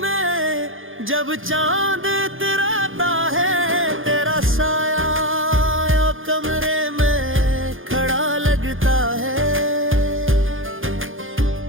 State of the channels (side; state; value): left; late; 0.59 ms